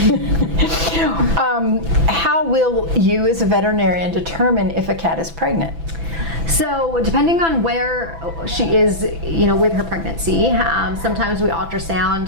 How will you as a veterinarian determine if a cat is pregnant? So depending on where she is, with her pregnancy, sometimes we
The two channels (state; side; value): late; left; 6.0 ms